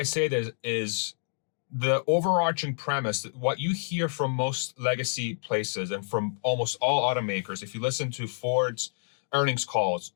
say this is the overarching premise, what you hear from most legacy places and from almost all automakers, if you listen to Ford's earnings calls,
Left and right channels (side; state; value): right; silent; digital silence